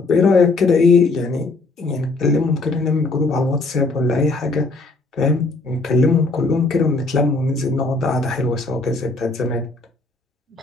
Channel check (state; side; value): quieter; right; 3.4 dB